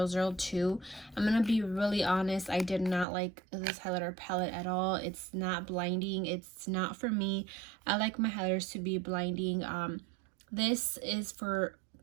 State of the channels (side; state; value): left; drops out; at 3.1 s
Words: I'm gonna be really honest, I did not like this highlighter palette at all. It's not blinding. It's not for me. I like my highlighters to be blinding. This is for